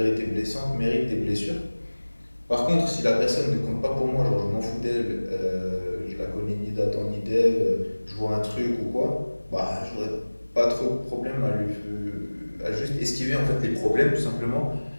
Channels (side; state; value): both; inverted; correlation -1.00